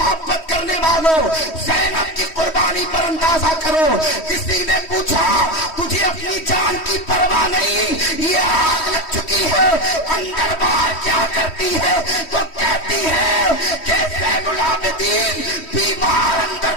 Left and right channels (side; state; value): right; late; 3.1 ms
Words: کرنے والوں، زینب کی قربانی پر اندازہ کرو۔ کسی نے پوچھا تجھے اپنی جان کی پرواہ نہیں، یہ آگ لگ چکی ہے، اندر باہر کیا کرتی ہے؟ تو کہتی ہے کہ زین العابدین بیمار اندر